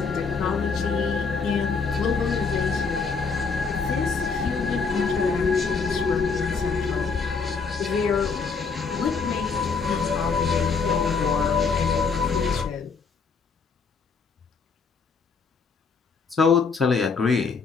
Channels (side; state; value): right; quieter; 5.1 dB